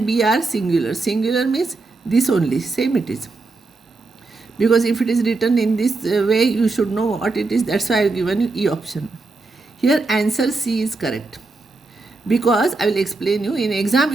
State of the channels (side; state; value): left; quieter; 3.6 dB